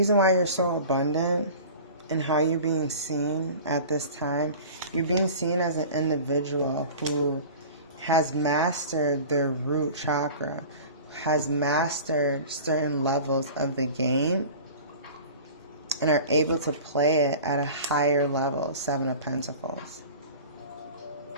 why you're so abundant and how you're being seen at this time, you're being seen as an individual who has mastered their root chakra, has mastered certain levels of the game, and are able to play it at a higher level, 7 of Pentacles.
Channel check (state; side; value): inverted; both; correlation -0.40